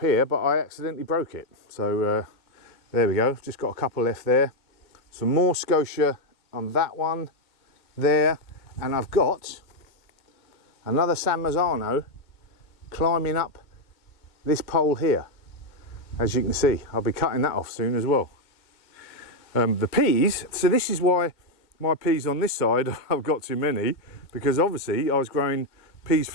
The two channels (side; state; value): right; late; 2.1 ms